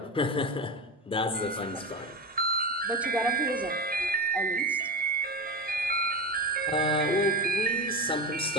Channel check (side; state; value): both; normal; correlation 0.21